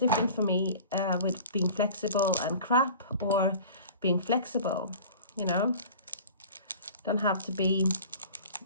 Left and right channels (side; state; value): both; inverted; correlation -0.41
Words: for me with being flexible and crap, or being flexible, you know. Don't have to be